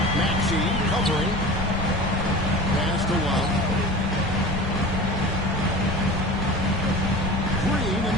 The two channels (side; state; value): both; normal; correlation 0.35